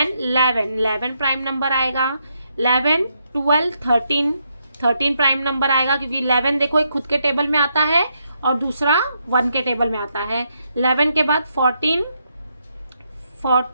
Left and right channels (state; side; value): inverted; both; correlation -0.79